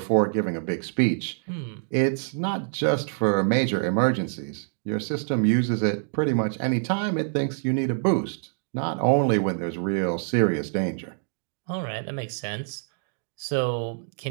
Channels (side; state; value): left; silent; digital silence